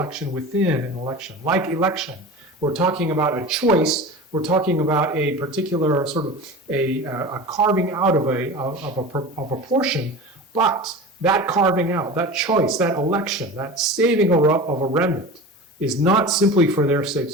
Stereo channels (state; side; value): normal; both; correlation 0.33